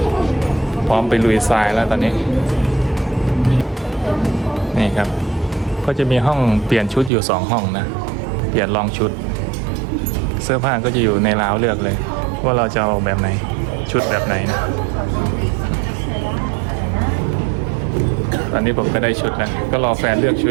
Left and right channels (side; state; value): left; drops out; at 7.1 s